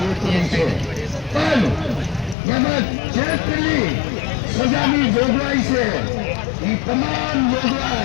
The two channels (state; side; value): drops out; right; at 2.4 s